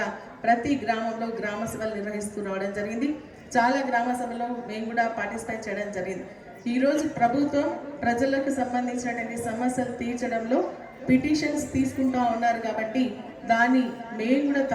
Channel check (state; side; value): identical; both; correlation 1.00